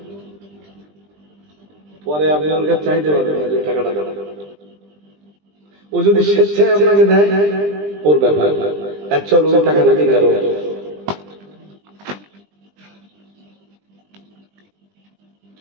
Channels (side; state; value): left; late; 20 ms